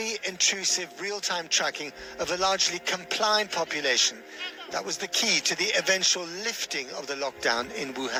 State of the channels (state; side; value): identical; both; correlation 1.00